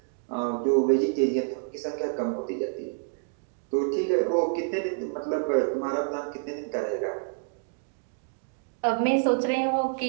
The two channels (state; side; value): silent; left; digital silence